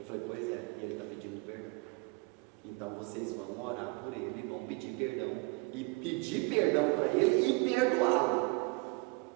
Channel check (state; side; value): quieter; left; 28.5 dB